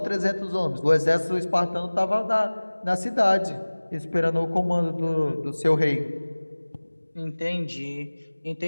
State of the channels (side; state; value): both; inverted; correlation -1.00